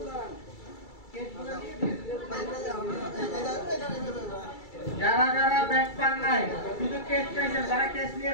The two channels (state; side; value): late; right; 2.3 ms